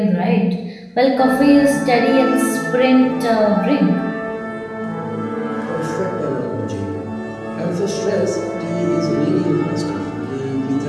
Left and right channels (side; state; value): both; identical; correlation 1.00